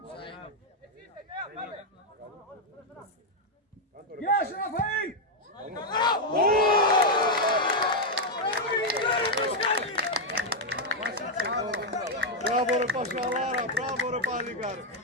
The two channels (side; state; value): both; normal; correlation 0.01